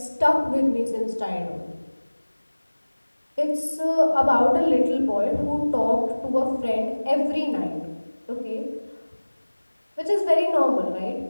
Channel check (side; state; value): both; inverted; correlation -1.00